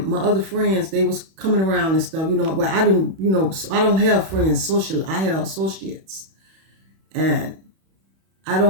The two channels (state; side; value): late; left; 31 ms